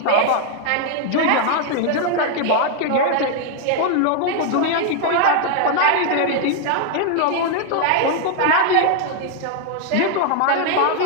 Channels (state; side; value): different; both; correlation 0.00